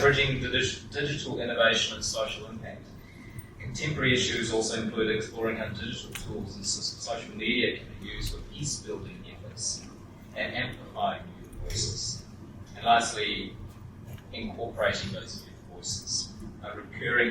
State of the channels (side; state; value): both; identical; correlation 1.00